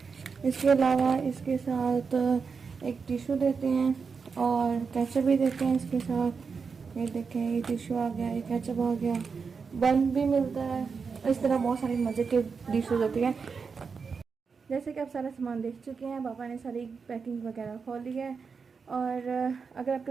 इसके अलावा इसके साथ एक टिश्यू देते हैं और केचप भी देते हैं इसके साथ। ये देखें, ये टिश्यू आ गया, ये केचप आ गया, बन भी मिलता है। इस तरह बहुत सारी मज़े की डिशेज होती हैं। जैसे कि आप सारा सामान देख चुके हैं, पापा ने सारी पैकिंग वगैरह खोल ली है। और अगर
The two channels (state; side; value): quieter; left; 5.4 dB